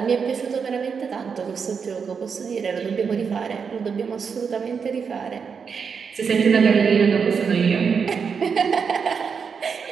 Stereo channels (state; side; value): quieter; left; 6.1 dB